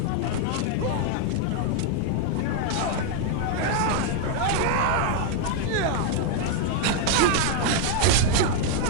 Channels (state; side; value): different; both; correlation 0.00